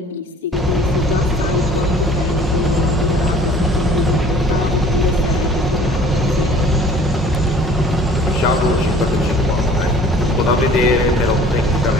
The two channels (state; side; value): normal; both; correlation 0.50